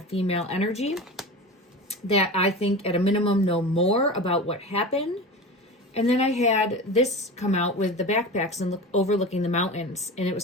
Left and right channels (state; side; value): normal; both; correlation 0.30